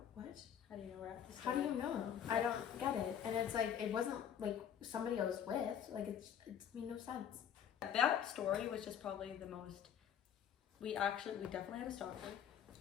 What? How do you know we're at this? How do you know? I don't get it. And it's like, it wasn't like somebody I was with. Like, it made no sense. That story was just probably the most, we definitely had a stalker.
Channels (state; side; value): quieter; right; 9.0 dB